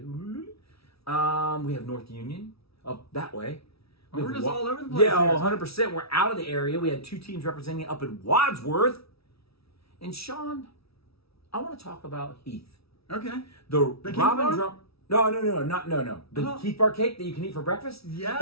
We have North Union up that way. We're just all over the place. Yeah, 100%. We're out of the area. We had 2 teams representing up in Wadsworth. And Sean, I want to talk about Heath. Okay. The Keith Robin bar? Drum. No. The Keith bar cake that you can eat for breakfast?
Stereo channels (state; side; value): late; right; 0.76 ms